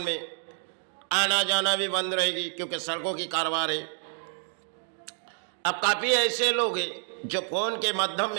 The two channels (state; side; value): silent; left; 59 dB below the other